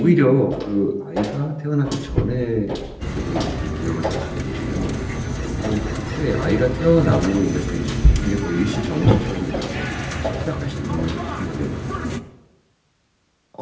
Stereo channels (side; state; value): both; identical; correlation 1.00